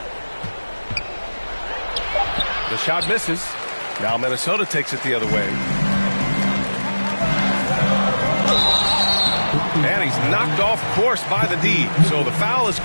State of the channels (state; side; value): inverted; both; correlation -1.00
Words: The shot misses. Now Minnesota takes it the other way. And he's knocked off course by the D. So the foul is